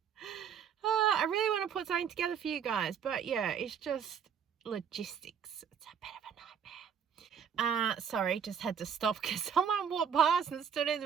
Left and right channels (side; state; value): left; quieter; 7.7 dB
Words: I really want to put something together for you guys, but yeah, it's just logistics. It's a bit of a nightmare. Sorry, just had to stop because someone walked past and stood in